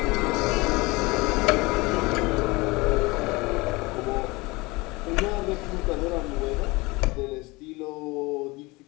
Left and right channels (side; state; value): right; quieter; 23.7 dB